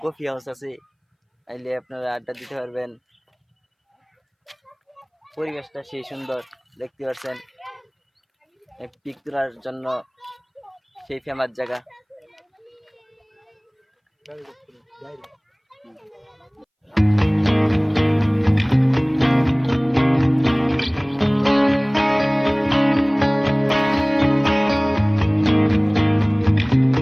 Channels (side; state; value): both; identical; correlation 1.00